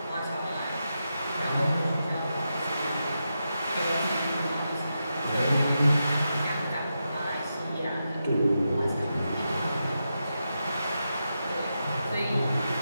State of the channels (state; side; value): inverted; both; correlation -0.87